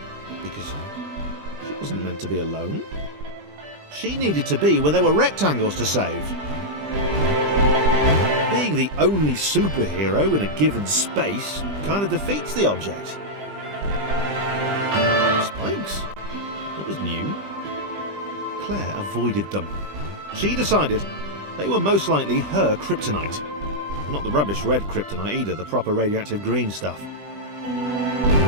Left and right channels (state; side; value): late; left; 20 ms